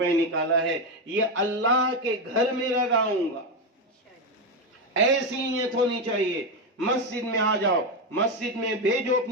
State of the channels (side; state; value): both; normal; correlation 0.10